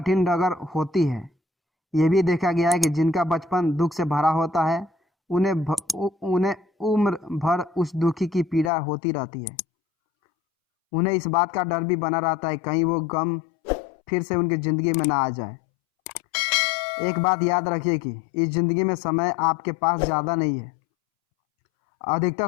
डगर होती है। ये भी देखा गया है कि जिनका बचपन दुख से भरा होता है उन्हें उम्र भर उस दुखी की पीड़ा होती रहती है। उन्हें इस बात का डर भी बना रहता है कहीं वो गम फिर से उनकी ज़िंदगी में ना आ जाए। एक बात याद रखिए कि इस ज़िंदगी में समय आपके पास ज़्यादा नहीं है। अधिकतर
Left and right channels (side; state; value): right; drops out; at 8.7 s